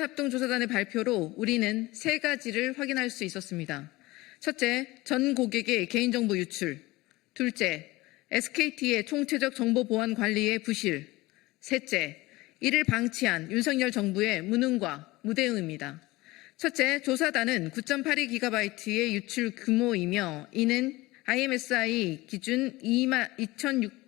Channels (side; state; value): right; quieter; 20.1 dB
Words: 발표로 우리는 3가지를 확인할 수 있었습니다. 첫째, 전 고객의 개인정보 유출. 둘째, SKT의 총체적 정보 보안 관리의 부실. 셋째, 이를 방치한 윤석열 정부의 무능과 무대응입니다. 첫째, 조사단은 9.82GB의 유출 규모이며 이는 IMSI 기준